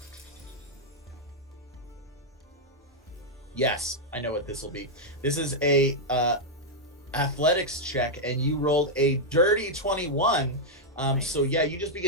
Yes, I know what this will be. This is a athletics check, and you rolled a dirty 21. Nice. So yeah, you just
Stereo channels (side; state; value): both; normal; correlation -0.03